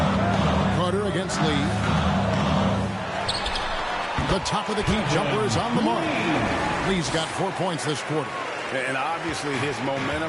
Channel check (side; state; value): both; identical; correlation 1.00